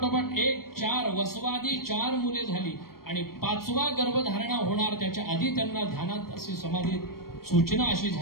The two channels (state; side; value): late; right; 0.94 ms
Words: एक 4 वसवादी 4 मुले झाली आणि 5वा गर्भधारणा होणार त्याच्या आधी त्यांना ध्यानात अशी समाधीत सूचना अशी